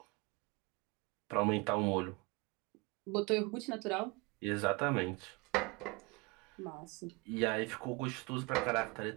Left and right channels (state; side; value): quieter; left; 27.8 dB